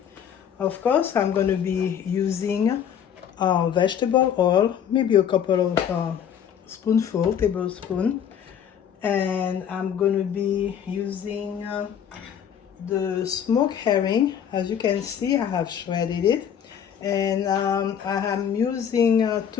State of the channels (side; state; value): right; quieter; 8.7 dB